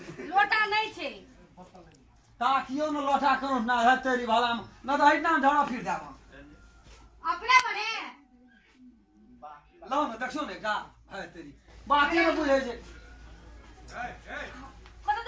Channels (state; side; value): identical; both; correlation 1.00